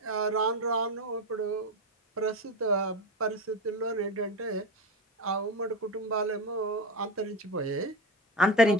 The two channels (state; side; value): normal; both; correlation 0.20